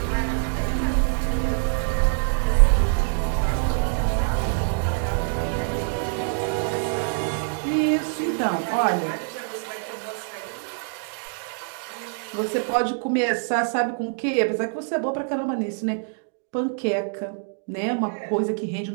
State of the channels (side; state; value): left; silent; digital silence